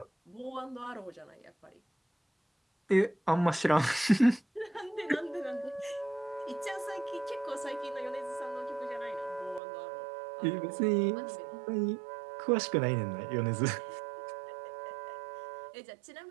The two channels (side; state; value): left; drops out; at 9.6 s